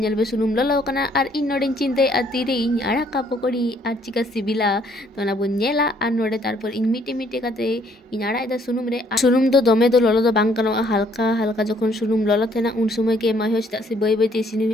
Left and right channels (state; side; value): normal; both; correlation 0.65